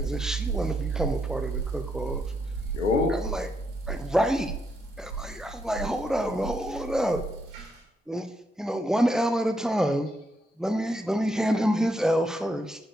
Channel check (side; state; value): both; normal; correlation 0.79